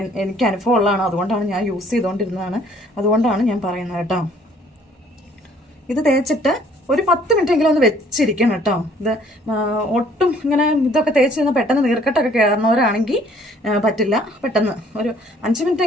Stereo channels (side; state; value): both; normal; correlation 0.59